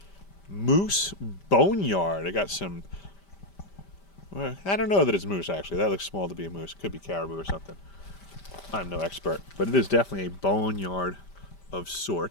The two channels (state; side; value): late; right; 5.1 ms